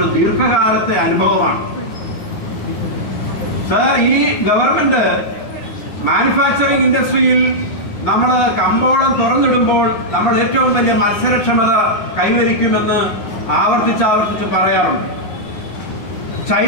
ദീർഘകാലത്തെ അനുഭവമാണ്. സർ, ഈ ഗവൺമെന്റ് മാനുഫാക്ചറിംഗ് ഇൻഡസ്ട്രിയിൽ നമ്മൾ കമ്പോളം തുറന്നിടുമ്പോൾ നമ്മൾ ഏറ്റവും വലിയ മത്സരക്ഷമത കൈവരിക്കുമെന്ന് ആവർത്തിച്ച് പറയാറുണ്ട്.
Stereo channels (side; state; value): right; late; 9.4 ms